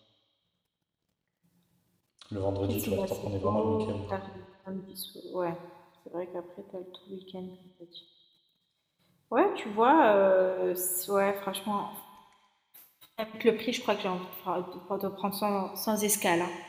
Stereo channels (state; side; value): identical; both; correlation 1.00